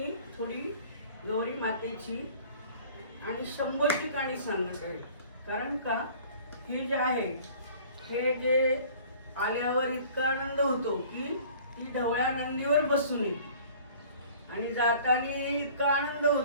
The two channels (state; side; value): inverted; both; correlation -0.49